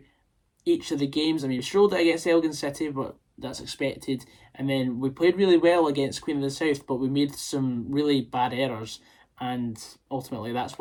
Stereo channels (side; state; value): both; identical; correlation 1.00